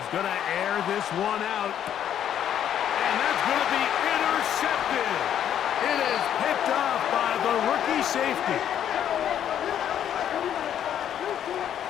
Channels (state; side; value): quieter; right; 9.9 dB